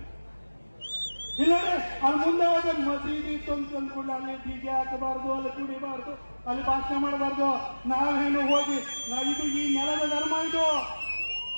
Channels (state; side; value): inverted; both; correlation -1.00